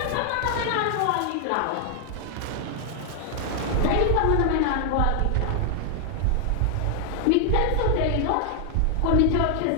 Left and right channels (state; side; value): different; both; correlation 0.00